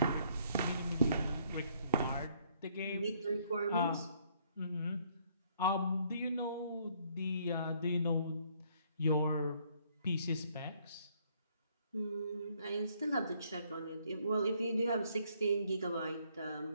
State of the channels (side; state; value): both; inverted; correlation -0.66